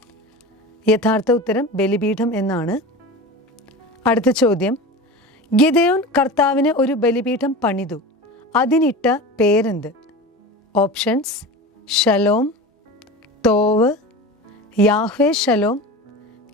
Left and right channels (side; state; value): both; normal; correlation 0.31